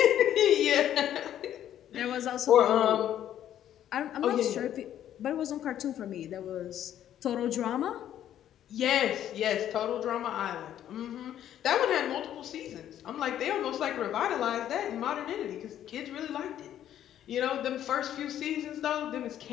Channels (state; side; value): quieter; right; 11.1 dB